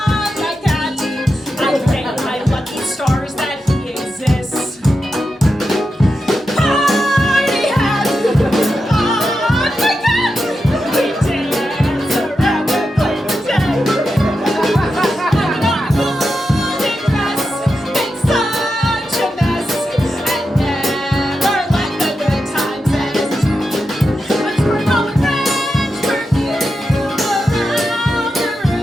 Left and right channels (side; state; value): both; normal; correlation 0.88